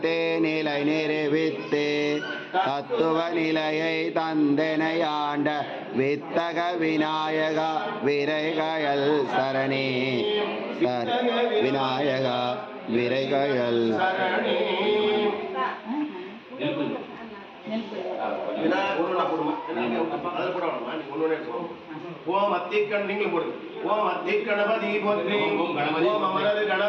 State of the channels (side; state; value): both; identical; correlation 1.00